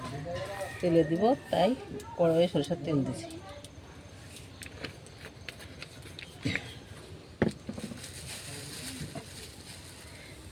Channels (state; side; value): identical; both; correlation 1.00